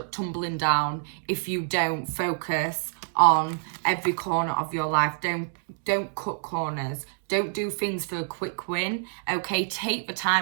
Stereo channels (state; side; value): silent; left; digital silence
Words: tumbling down if you don't focus on every corner of your life. Don't cut corners. Don't do things for a quick win, okay? Take the